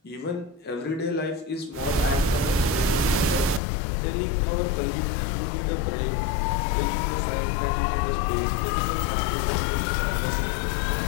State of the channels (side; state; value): right; drops out; at 3.6 s